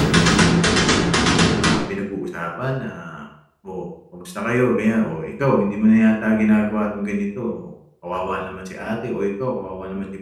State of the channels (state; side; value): identical; both; correlation 1.00